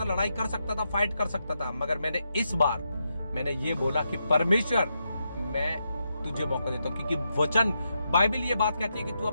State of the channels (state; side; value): inverted; both; correlation -0.84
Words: लड़ाई कर सकता था, फाइट कर सकता था, मगर मैंने इस बार मैंने ये बोला कि परमेश्वर, मैं तुझे मौका देता हूं, क्योंकि वचन, बाइबल ये बात कहती है कि तू